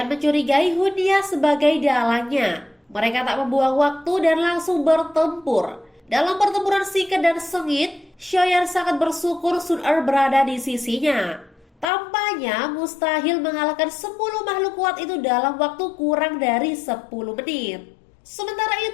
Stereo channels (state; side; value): drops out; right; at 11.9 s